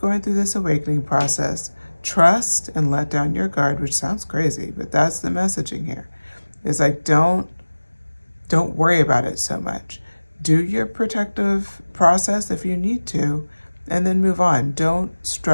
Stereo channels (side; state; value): both; inverted; correlation -1.00